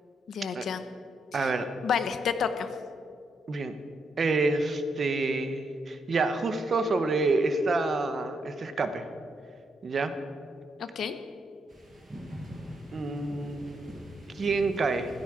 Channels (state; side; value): normal; both; correlation 0.78